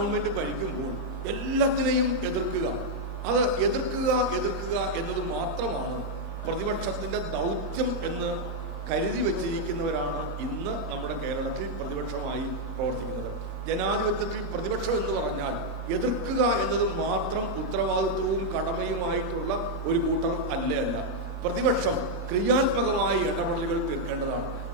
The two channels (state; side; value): normal; both; correlation -0.02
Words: ഭരിക്കുമ്പോൾ എല്ലാത്തിനെയും എതിർക്കുക, അത് എതിർക്കുക എന്നത് മാത്രമാണ് പ്രതിപക്ഷത്തിന്റെ ദൗത്യം എന്ന് കരുതി വെച്ചിരിക്കുന്നവരാണ് ഇന്ന് നമ്മുടെ കേരളത്തിൽ പ്രതിപക്ഷമായി പ്രവർത്തിക്കുന്നത്. ജനാധിപത്യത്തിൽ പ്രതിപക്ഷം എന്ന് പറഞ്ഞാൽ എതിർക്കുക എന്നത് മാത്രം ഉത്തരവാദിത്വവും കടമയുമായിട്ടുള്ള ഒരു കൂട്ടർ അല്ല. പ്രതിപക്ഷം ക്രിയാത്മകമായ ഇടപെടലുകൾ തീർക്കേണ്ടതാണ്.